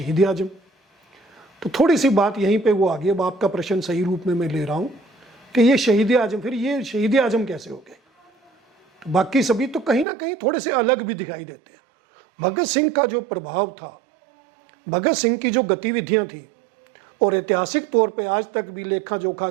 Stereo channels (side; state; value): left; drops out; at 10.1 s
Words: आजम। तो थोड़ी सी बात यहीं पे वो आ गई। अब आपका प्रश्न सही रूप में मैं ले रहा हूँ कि ये शहीद आजम, फिर ये शहीद आजम कैसे हो गए? तो बाकी सभी तो कहीं ना कहीं थोड़े से अलग भी दिखाई देते हैं। भगत सिंह का जो प्रभाव था, भगत सिंह की जो गतिविधियां थी, और ऐतिहासिक तौर पे आज तक भी लेखा जोखा